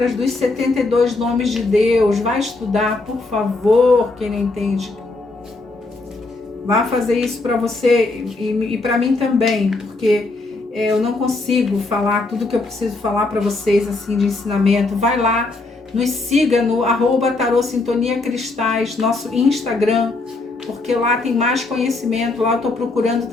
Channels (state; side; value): quieter; right; 3.3 dB